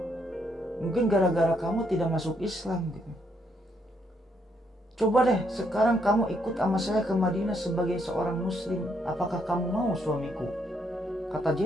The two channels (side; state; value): both; normal; correlation 0.73